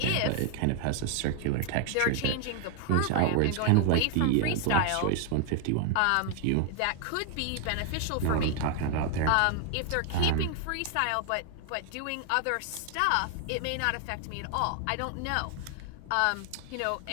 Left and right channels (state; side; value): different; both; correlation 0.00